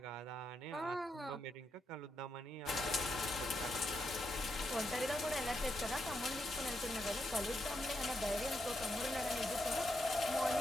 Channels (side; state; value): both; normal; correlation 0.82